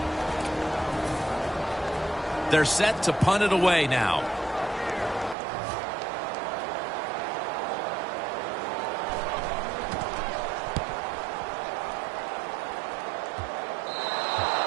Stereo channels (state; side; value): drops out; left; at 5.4 s